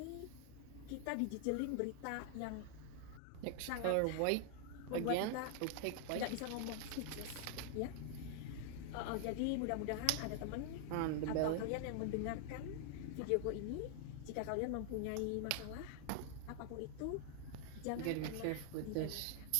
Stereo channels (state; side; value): different; both; correlation 0.00